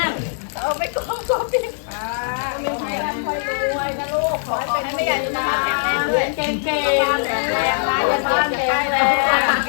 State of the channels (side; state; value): right; silent; 64 dB below the other